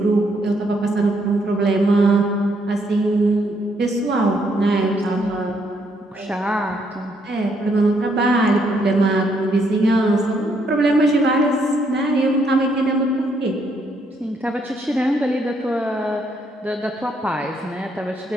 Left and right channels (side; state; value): both; normal; correlation 0.72